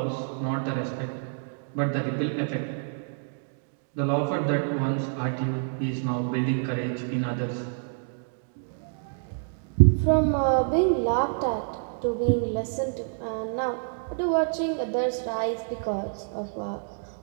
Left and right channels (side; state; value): left; silent; digital silence